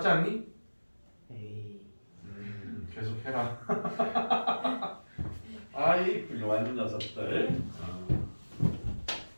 않니? 에이. 계속 해라. 아이, 훌륭한 녀석들.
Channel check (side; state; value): both; inverted; correlation -1.00